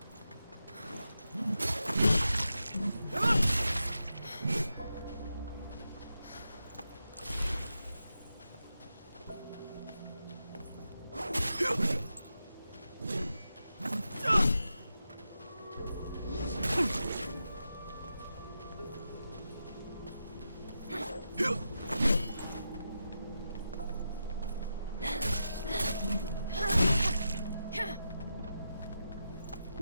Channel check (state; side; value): inverted; both; correlation -0.88